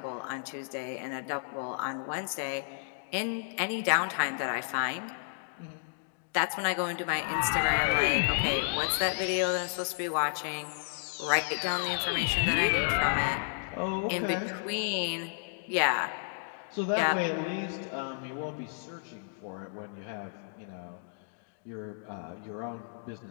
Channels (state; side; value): silent; right; digital silence